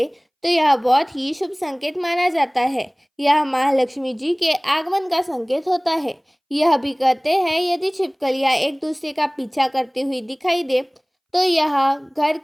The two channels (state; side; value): identical; both; correlation 1.00